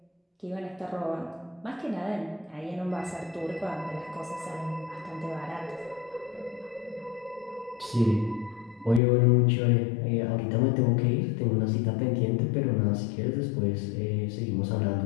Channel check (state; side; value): drops out; right; at 9.0 s